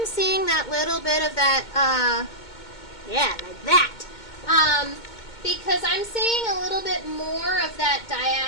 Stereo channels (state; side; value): late; right; 2.2 ms